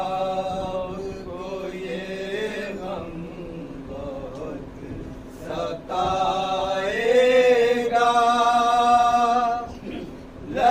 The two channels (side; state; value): both; identical; correlation 1.00